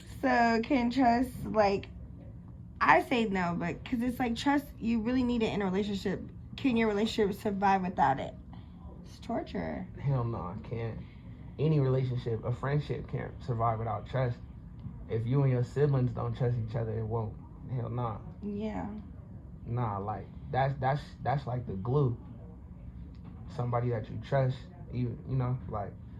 So can trust, like, I say no, but because it's like trust, you really need it in a relationship. Can your relationship survive without it? It's torture. Hell no, I can't. any relationship, a friendship can't survive without trust. If you and your siblings don't trust each other, it won't. Hell nah. Yeah. Nah, like that's like the glue. Somebody that you trust, you know, like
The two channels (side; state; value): both; identical; correlation 1.00